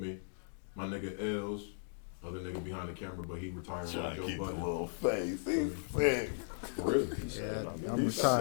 My nigga Els. Other nigga behind the camera, but he retired Trying like to Joe keep the Budden. little face. He's sick. For real. Yeah, I'm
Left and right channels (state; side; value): silent; right; digital silence